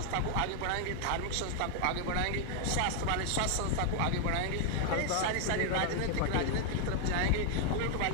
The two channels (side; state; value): both; different; correlation 0.00